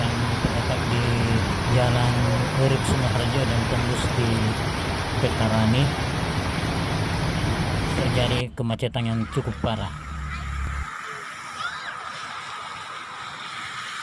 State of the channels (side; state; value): both; identical; correlation 1.00